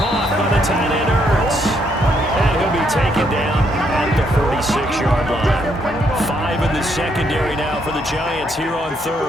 by the tight end Ertz. And he'll be taken down at the 46-yard line. 5 in the secondary now for the Giants here on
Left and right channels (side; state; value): both; normal; correlation 0.73